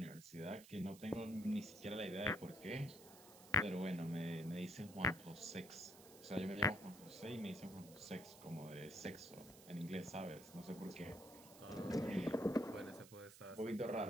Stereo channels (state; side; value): noise; right; hiss, 18 dB below the sound